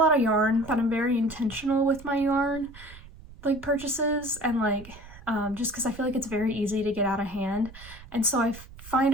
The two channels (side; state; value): right; noise; rumble, 18 dB below the sound